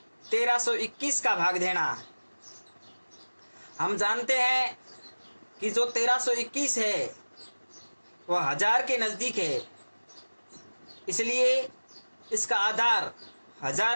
1321 का भाग देना। हम जानते हैं कि जो 1321 है वह 1000 के नजदीक है, इसलिए इसका आधार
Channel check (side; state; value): both; inverted; correlation -1.00